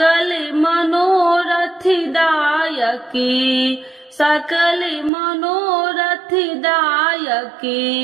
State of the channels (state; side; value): drops out; left; at 5.1 s